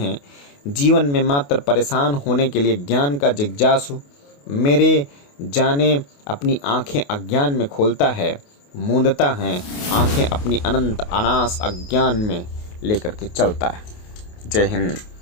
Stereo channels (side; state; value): right; late; 28 ms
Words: जीवन में मात्र परेशान होने के लिए ज्ञान का जिज्ञासु मेरे जाने अपनी आंखें अज्ञान में खोलता है, मूंदता है आंखें अपनी अनंत अनास अज्ञान में लेकर के चलता है। जय हिंद,